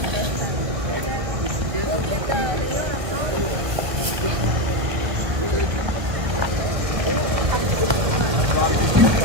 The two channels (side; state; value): left; late; 1.0 ms